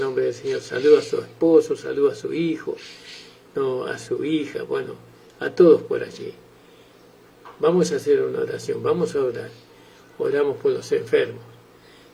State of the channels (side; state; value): both; identical; correlation 1.00